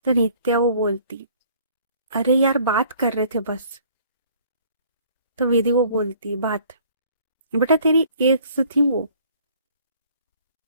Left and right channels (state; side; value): inverted; both; correlation -0.56